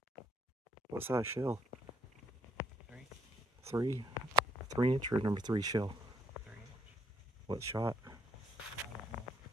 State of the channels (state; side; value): normal; both; correlation 0.68